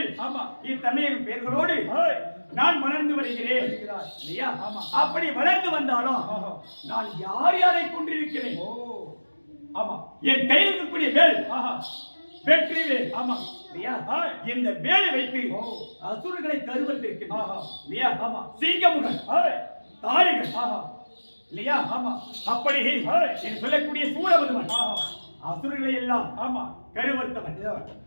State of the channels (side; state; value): both; inverted; correlation -1.00